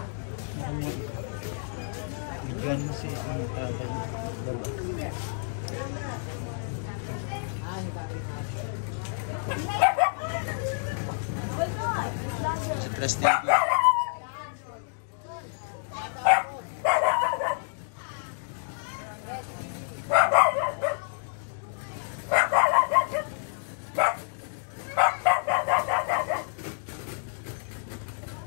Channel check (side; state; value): right; silent; digital silence